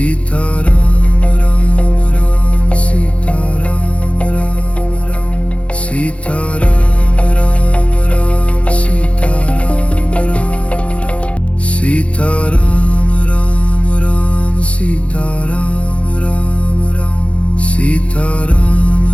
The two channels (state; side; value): late; right; 0.062 ms